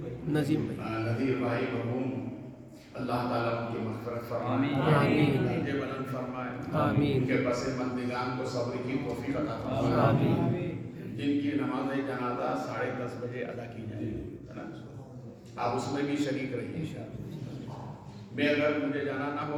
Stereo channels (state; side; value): identical; both; correlation 1.00